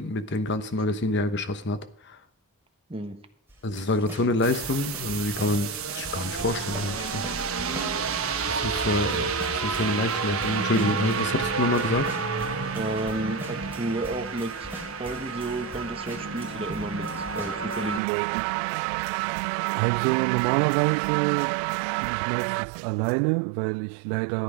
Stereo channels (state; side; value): drops out; left; at 18.0 s